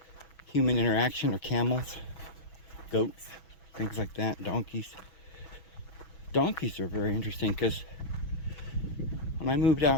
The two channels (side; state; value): right; late; 6.2 ms